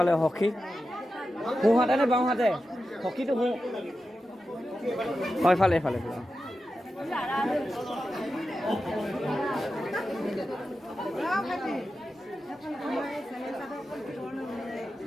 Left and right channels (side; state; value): both; normal; correlation 0.91